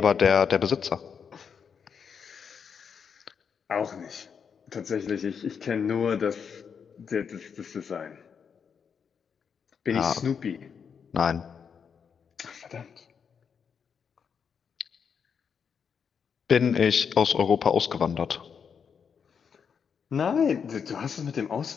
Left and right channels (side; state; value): right; quieter; 6.7 dB